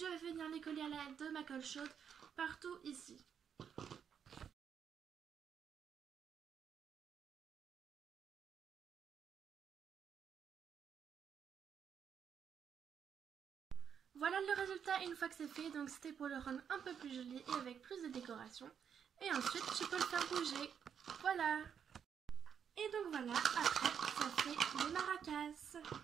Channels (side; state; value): left; quieter; 7.8 dB